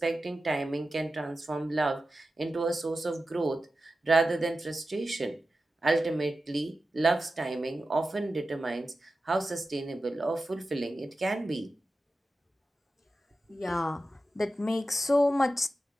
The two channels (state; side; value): normal; both; correlation 0.93